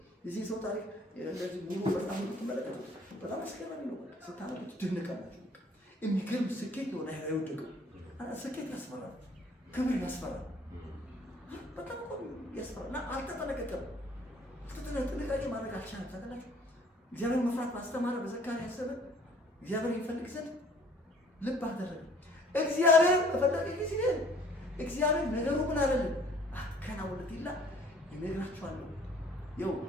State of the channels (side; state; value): both; normal; correlation 0.56